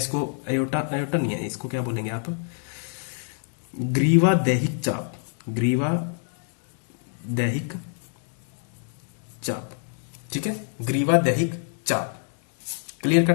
एओर्टा, एओर्टा नहीं है, इसको क्या बोलेंगे आप? ग्रीवा दैहिक चाप। ग्रीवा दैहिक चाप। ठीक है, ग्रीवा दैहिक चाप। Clear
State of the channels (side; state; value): right; silent; 55 dB below the other